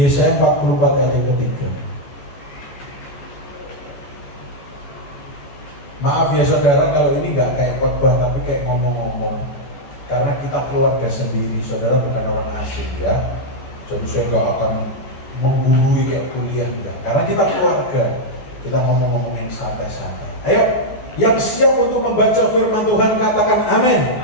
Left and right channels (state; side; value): late; right; 14 ms